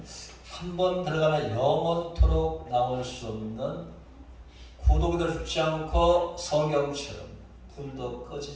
한 번 들어가면 영원토록 나올 수 없는 구독이 죽지 않고 성경처럼 불도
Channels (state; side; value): identical; both; correlation 1.00